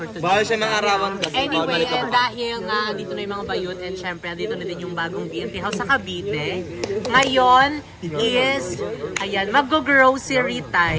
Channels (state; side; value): identical; both; correlation 1.00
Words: today. Bawal siya mangarawan kasi. Anyway, and dahil nga andito na yung mga bayot and syempre andito na din yung bagong BNT House sa Cavite. Ngayon is, ayan, mag-grocery